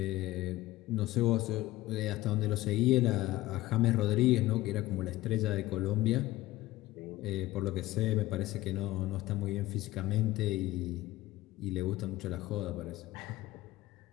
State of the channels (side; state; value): right; quieter; 17.4 dB